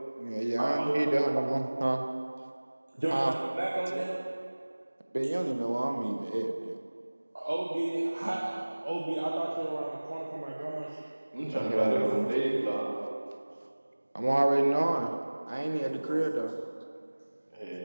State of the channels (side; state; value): both; inverted; correlation -1.00